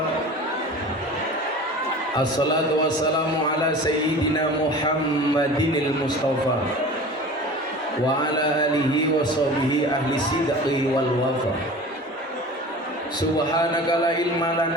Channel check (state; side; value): normal; both; correlation 0.38